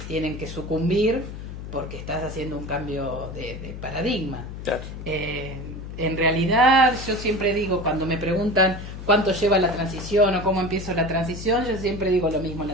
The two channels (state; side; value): noise; left; hum, 10 dB below the sound